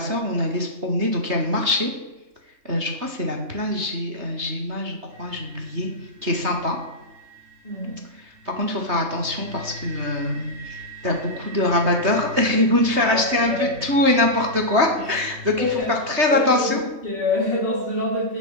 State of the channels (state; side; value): late; left; 3.2 ms